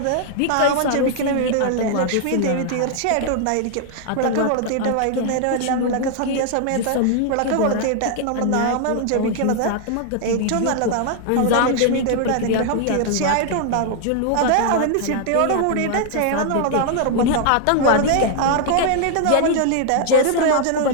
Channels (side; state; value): both; different; correlation 0.00